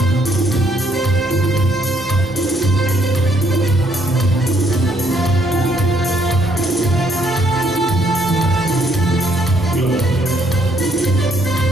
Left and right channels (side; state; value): both; normal; correlation 0.69